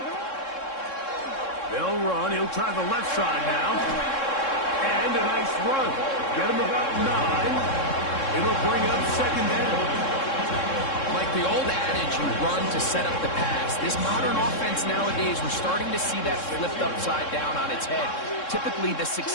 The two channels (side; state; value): right; late; 3.7 ms